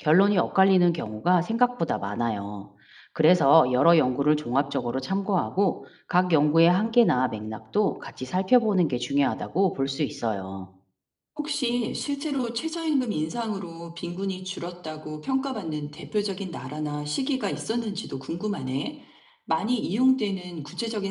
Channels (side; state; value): both; identical; correlation 1.00